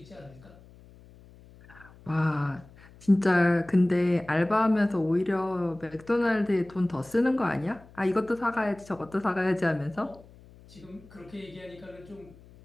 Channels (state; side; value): noise; left; hum, 23 dB below the sound